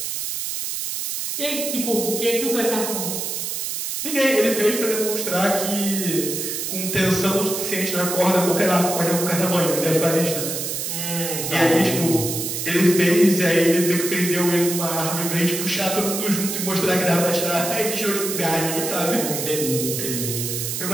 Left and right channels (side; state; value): right; noise; hiss, 3 dB below the sound